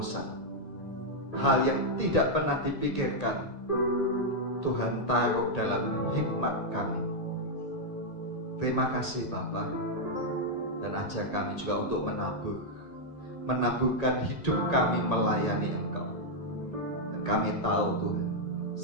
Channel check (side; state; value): right; late; 1.8 ms